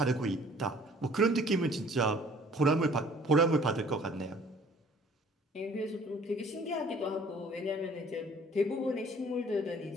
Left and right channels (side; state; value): both; normal; correlation 0.54